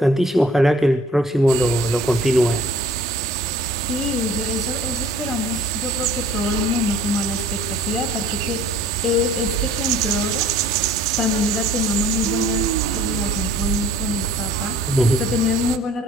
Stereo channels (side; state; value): both; normal; correlation 0.53